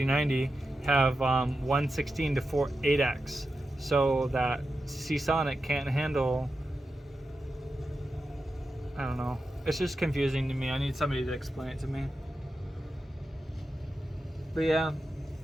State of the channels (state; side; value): normal; both; correlation 0.90